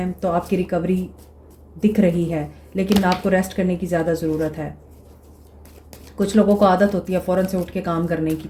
तो आपकी रिकवरी दिख रही है, लेकिन आपको रेस्ट करने की ज़्यादा ज़रूरत है। कुछ लोगों को आदत होती है फ़ौरन से उठ के काम करने की,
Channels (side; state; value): both; identical; correlation 1.00